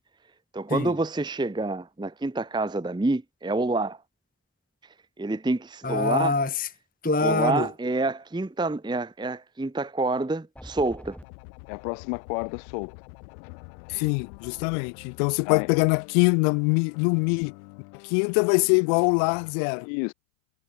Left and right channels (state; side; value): drops out; right; at 11.2 s